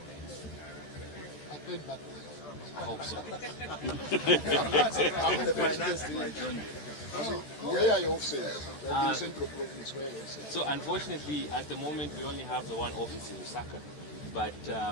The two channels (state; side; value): late; right; 14 ms